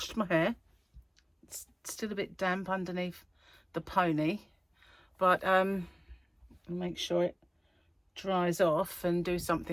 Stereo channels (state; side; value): identical; both; correlation 1.00